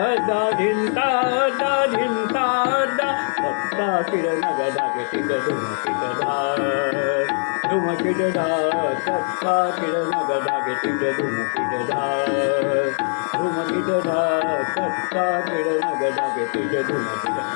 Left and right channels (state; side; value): silent; right; 64 dB below the other